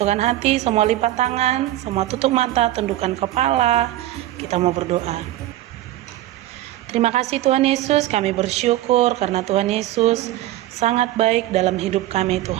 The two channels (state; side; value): quieter; left; 14.9 dB